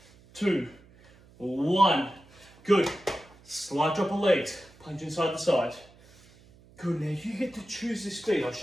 2, 1. Good. Slight drop of legs. Punch inside the side. Good, now you get to choose the speed. I'll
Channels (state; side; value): noise; right; hum, 26 dB below the sound